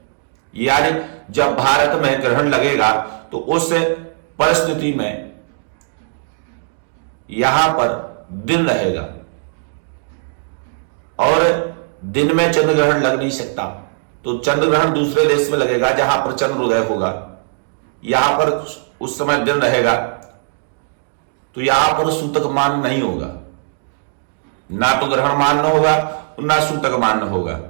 यानी जब भारत में ग्रहण लगेगा तो उस परिस्थिति में यहां पर दिन रहेगा और दिन में चंद्र ग्रहण लग नहीं सकता। तो चंद्र ग्रहण दूसरे देश में लगेगा जहां पर चंद्रोदय होगा, यहां पर उस समय दिन रहेगा, तो यहां पर सूतक मान्य नहीं होगा। ना तो ग्रहण मान्य होगा ना सूतक मान्य होगा।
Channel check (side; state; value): left; silent; digital silence